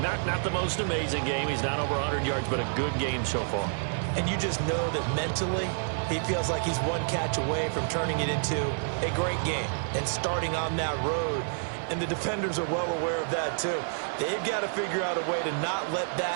Not the most amazing game. He's not over 100 yards, but a good game so far. And you just know that mentally, he feels like he's one catch away from turning it into a great game and starting on that road. And the defenders are well aware of that, too. They've got to figure out a way to not let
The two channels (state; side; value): silent; left; 59 dB below the other